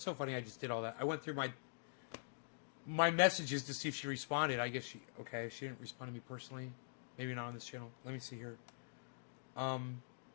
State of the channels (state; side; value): silent; right; digital silence